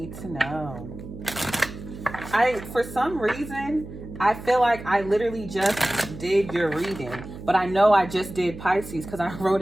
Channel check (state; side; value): noise; right; hum, 13 dB below the sound